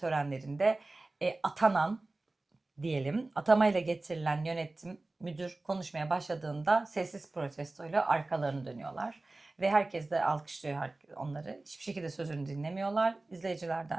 atanan diyelim atamayla getirilen yönetim müdür konuşmaya başladığında sessiz protestoyla arkalarını dönüyorlar. Ve herkes de alkışlıyor onları. Hiçbir şekilde sözünü dinlemiyorlar.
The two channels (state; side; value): quieter; left; 3.1 dB